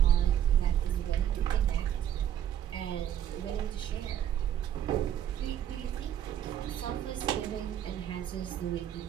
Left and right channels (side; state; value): left; quieter; 10.4 dB